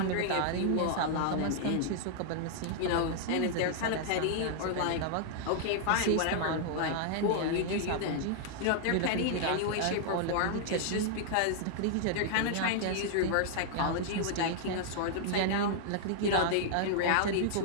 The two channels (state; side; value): different; both; correlation -0.01